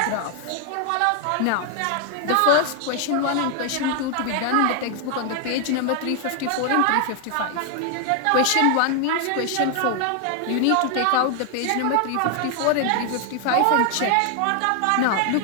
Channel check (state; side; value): different; both; correlation 0.00